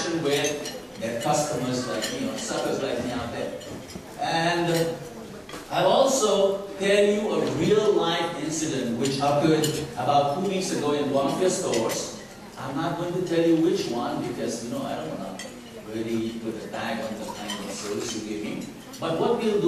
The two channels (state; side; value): identical; both; correlation 1.00